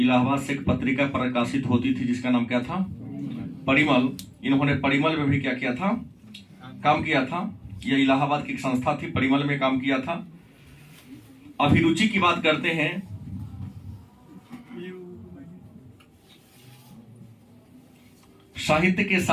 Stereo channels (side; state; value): both; identical; correlation 1.00